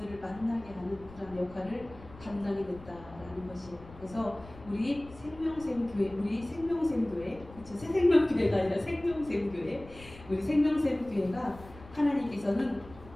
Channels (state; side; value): noise; left; rumble, 19 dB below the sound